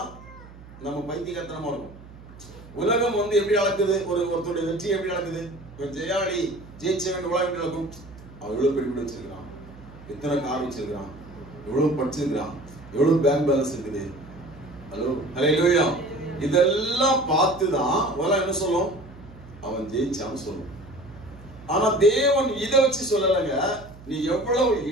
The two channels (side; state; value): right; noise; hum, 19 dB below the sound